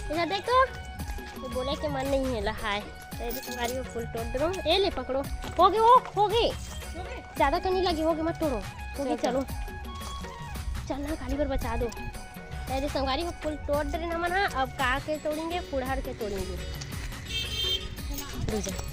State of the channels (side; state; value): both; identical; correlation 1.00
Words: इधर देखो, ये बोले के मन नहीं है लहाय। तेरी संगवारी हो फूल तोड़ दो। ए ले पकड़ो, हो गए, वो हो गए, ज़्यादा तो नहीं लगी, हो गए, मत तोड़ो, हो गए, चलो चलना, खाली पर बचा दो। तेरी संगवारी हो फूल तोड़ दे ना मना। अब का के तोड़ेंगे, फुड़हर के तोड़ेंगे।